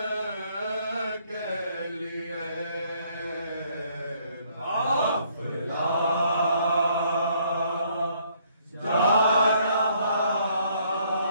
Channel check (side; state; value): both; inverted; correlation -0.66